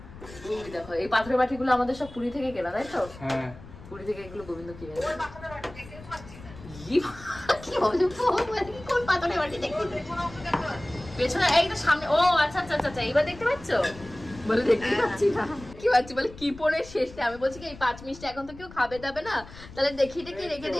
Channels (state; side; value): noise; left; rumble, 17 dB below the sound